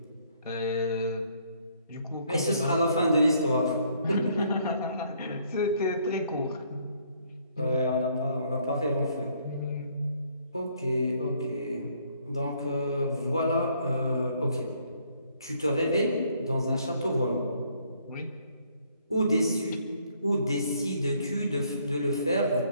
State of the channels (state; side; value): inverted; both; correlation -0.66